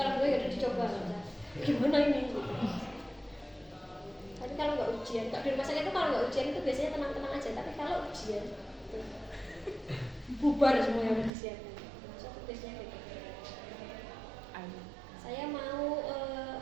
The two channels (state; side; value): drops out; left; at 11.3 s